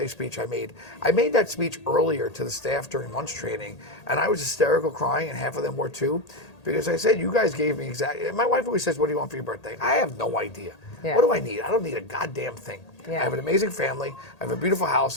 speech I made. I made that speech earlier to the staff during lunch training, and I was hysterical crying, and half of them were too, because I said, you guys gave me exactly. My wife always says, what do you want for your birthday? I have no idea. Yeah. What do I need? I don't need a goddamn thing. Yeah. I have an amazing family. I have a beautiful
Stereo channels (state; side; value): late; right; 1.8 ms